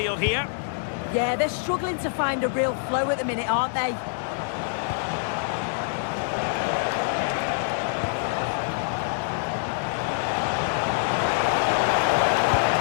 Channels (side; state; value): right; silent; digital silence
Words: here. Yeah, they're struggling to find a real flow at the minute, aren't they?